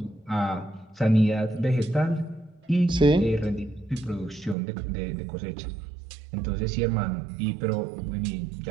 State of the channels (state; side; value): drops out; left; at 4.5 s